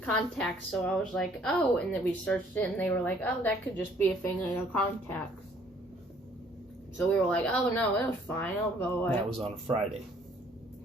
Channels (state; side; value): normal; both; correlation 0.61